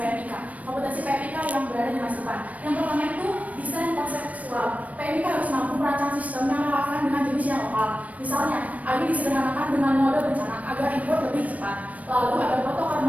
Kompetensi PMIK yang berada di masa depan. Yang pertama itu desain konseptual. PMIK harus mampu merancang sistem yang relevan dengan jenis yang lokal. Misalnya, ini disederhanakan dengan mode bencana agar input lebih cepat. Lalu ada protokol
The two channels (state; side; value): late; left; 0.069 ms